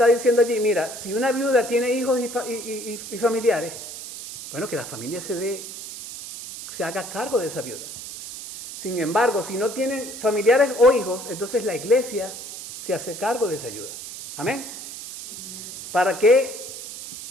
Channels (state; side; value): noise; right; hiss, 11 dB below the sound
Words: diciendo allí, mira, si una viuda tiene hijos y familiares, bueno, que la familia se haga cargo de esa viuda. Sin embargo, si no tienen familiares o hijos, entonces la iglesia se hace cargo de esa ayuda. Amén. ¿Para qué